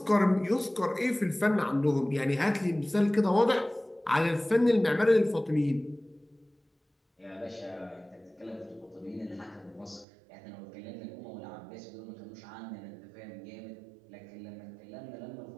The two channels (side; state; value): left; drops out; at 10.1 s